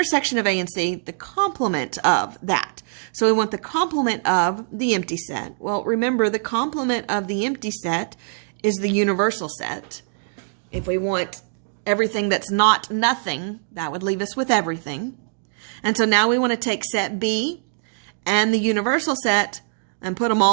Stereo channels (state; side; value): silent; left; digital silence